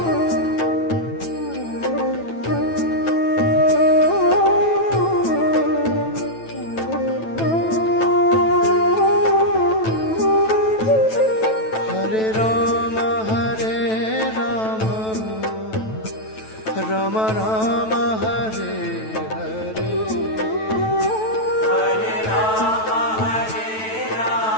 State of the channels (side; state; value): right; late; 9.1 ms